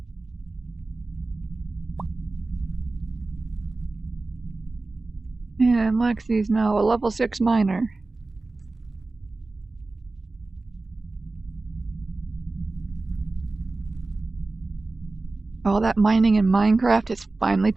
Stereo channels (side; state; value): left; quieter; 3.3 dB